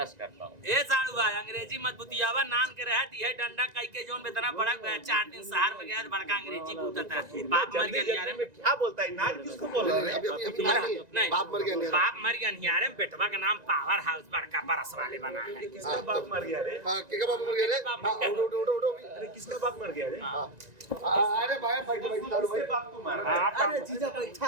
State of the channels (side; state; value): left; late; 1.9 ms